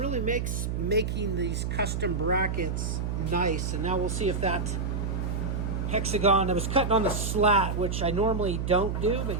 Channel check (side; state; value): right; noise; hum, 1 dB below the sound